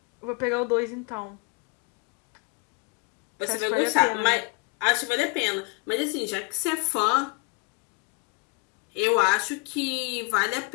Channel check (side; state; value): right; quieter; 30.7 dB